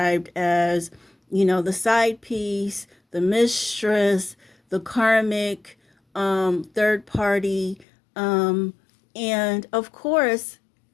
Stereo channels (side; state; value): right; drops out; at 7.9 s